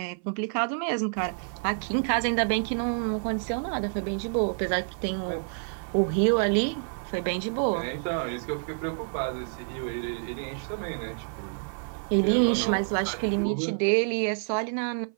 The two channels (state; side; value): silent; left; 56 dB below the other